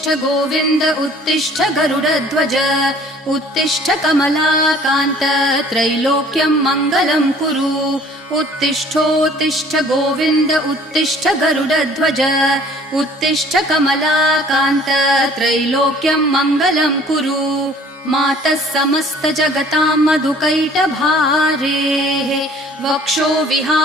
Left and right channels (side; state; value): both; normal; correlation 0.53